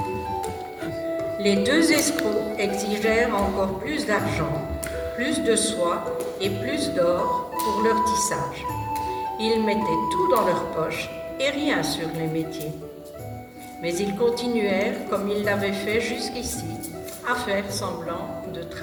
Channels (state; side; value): identical; both; correlation 1.00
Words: Les 2 escrocs exigèrent encore plus d'argent, plus de soie et plus d'or pour leur tissage. Ils mettaient tout dans leur poche et rien sur les métiers. Mais ils continuèrent, comme ils l'avaient fait jusqu'ici, à faire semblant de